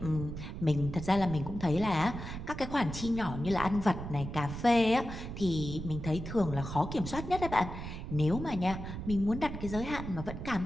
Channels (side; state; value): right; noise; rumble, 8 dB below the sound